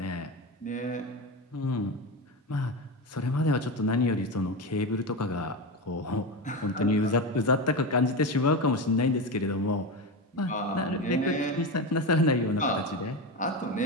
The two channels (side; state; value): both; normal; correlation 0.19